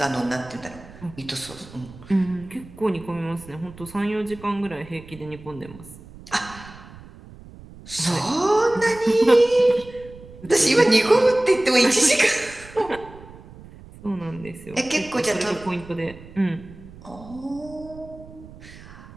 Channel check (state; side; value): noise; right; rumble, 19 dB below the sound